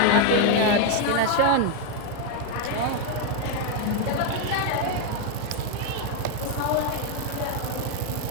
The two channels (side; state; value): both; different; correlation 0.01